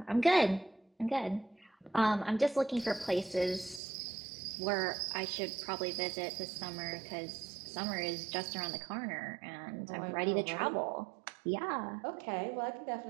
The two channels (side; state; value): left; drops out; at 3.8 s